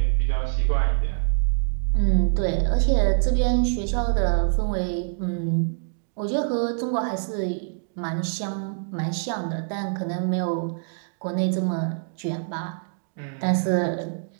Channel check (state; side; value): silent; left; digital silence